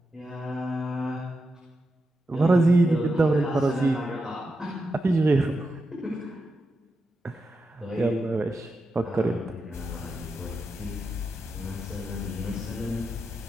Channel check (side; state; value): both; normal; correlation 0.88